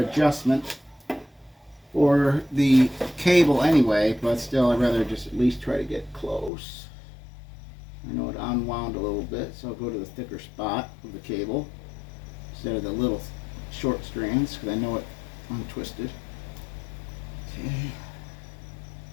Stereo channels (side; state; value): right; drops out; at 6.5 s